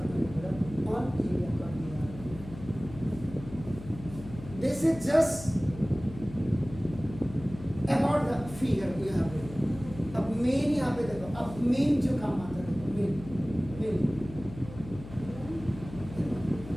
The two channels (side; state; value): left; noise; hum, 14 dB below the sound